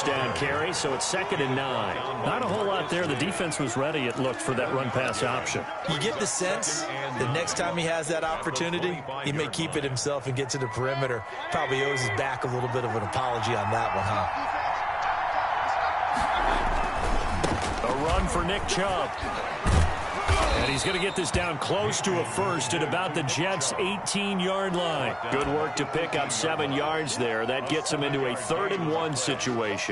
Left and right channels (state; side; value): identical; both; correlation 1.00